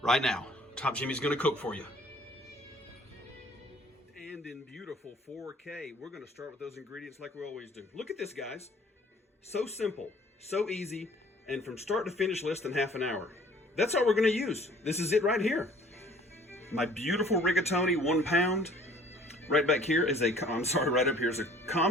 right now. Top Jimmy's gonna cook for you. And in beautiful 4K, we're gonna start with those ingredients like we always do. Look at this, guys. So simple, so easy, and from start to finish, less than half an hour. That's all we're gonna use. This is it right here. My beautiful rigatoni, 1 pound. Right back here is right up here is a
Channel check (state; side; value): normal; both; correlation 0.53